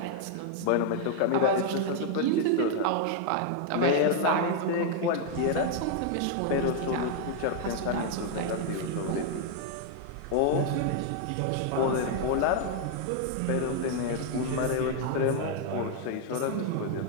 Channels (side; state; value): both; different; correlation 0.00